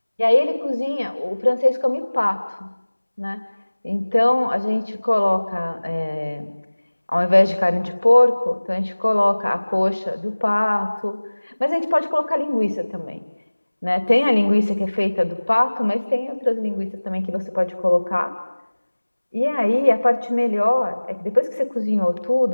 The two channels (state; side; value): inverted; both; correlation -1.00